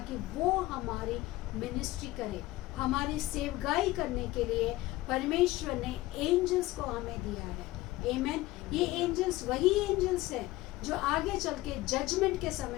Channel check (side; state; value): right; quieter; 18.1 dB